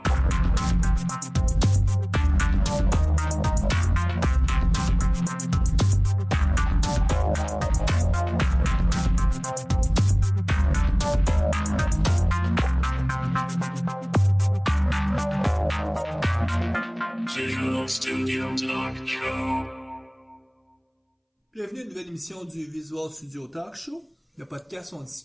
Visual Studio Talk Show. Bienvenue à une nouvelle émission du Visual Studio Talk Show. Le podcast où on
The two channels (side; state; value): both; identical; correlation 1.00